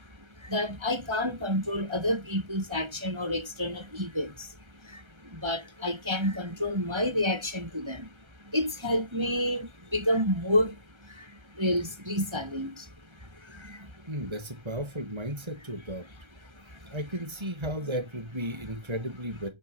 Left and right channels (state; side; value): late; left; 1.3 ms